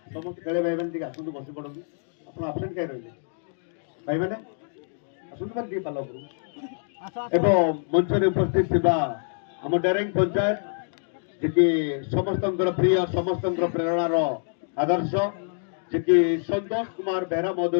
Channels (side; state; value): right; silent; digital silence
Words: ସମସ୍ତ ଖେଳେ ଭାଇମାନେ ଟିକେ ଆସନ୍ତୁ, ବସି ପଡ଼ନ୍ତୁ। ଆପଣ ଆବସେଣ୍ଟ କାହିଁ ରହିଲେ ଭାଇମାନେ? ଆସନ୍ତୁ ମାନେ ଟିକେ ପାଲ ଉପରକୁ। ଏବଂ ମଞ୍ଚରେ ଉପସ୍ଥିତ ଥିବା ଆମ ଡେରେଙ୍ଗ ପଞ୍ଚାୟତ, ଯିଏକି ସମସ୍ତଙ୍କର ପ୍ରିୟ, ସମସ୍ତଙ୍କର ପ୍ରେରଣାର ଆଦର୍ଶ, ଯିଏକି ସନ୍ତୋଷ କୁମାର ବେହେରା